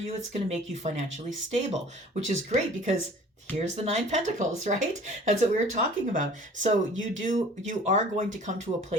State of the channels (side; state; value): both; normal; correlation 0.48